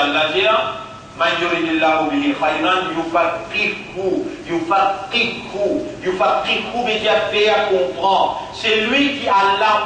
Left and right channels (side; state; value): both; identical; correlation 1.00